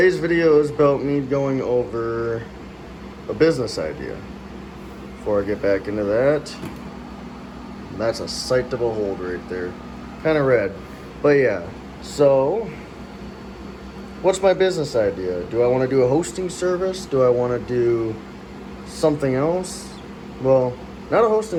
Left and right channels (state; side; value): identical; both; correlation 1.00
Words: video is about me going over a business idea. Before I get back into that, that's a sight to behold right there. Kind of red, but yeah. So, what's my business idea? Do I want to do a hosting service? Do I want to do something else? Well, not a